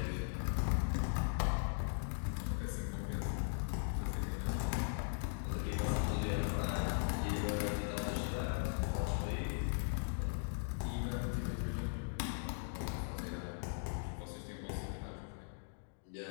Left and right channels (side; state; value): right; silent; digital silence